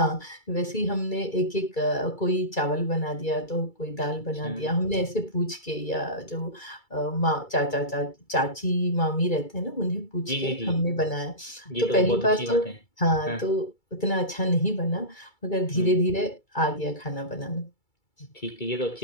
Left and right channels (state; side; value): late; right; 2.3 ms